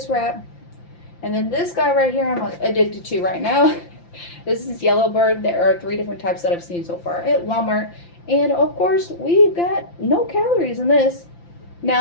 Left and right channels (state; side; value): late; right; 5.8 ms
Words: wrap. And then this guy right here, I'm addicted to right now. This is Yellowbird. There are 3 different types that I've seen so far at Walmart. And of course, we've got no calories in this.